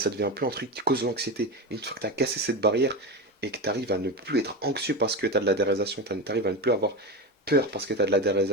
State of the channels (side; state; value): both; normal; correlation 0.20